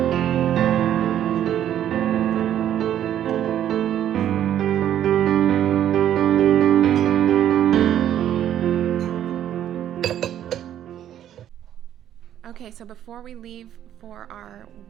Okay, so before we leave for our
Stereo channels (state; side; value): quieter; left; 10.9 dB